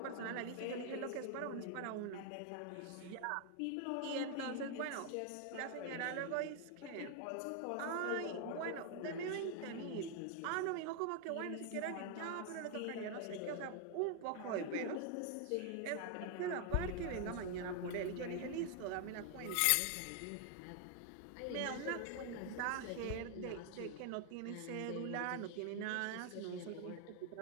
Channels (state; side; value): different; both; correlation 0.00